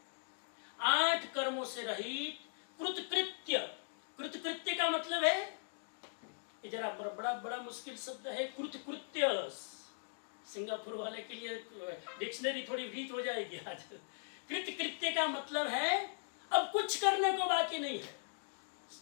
आठ कर्मों से रहित कृतकृत्य। कृतकृत्य का मतलब है, ये जरा बड़ा बड़ा मुश्किल शब्द है, कृतकृत्य। सिंगापुर वाले के लिए डिक्शनरी थोड़ी वीक हो जाएगी आज। कृतकृत्य का मतलब है अब कुछ करने को बाकी नहीं है,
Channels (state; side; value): silent; right; digital silence